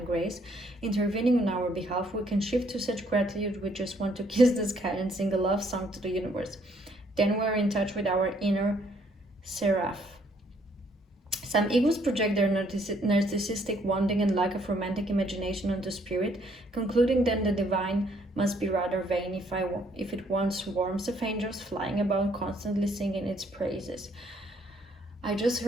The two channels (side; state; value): both; normal; correlation 0.67